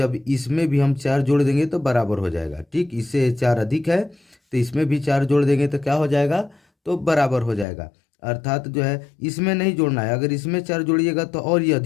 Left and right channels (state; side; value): drops out; right; at 7.7 s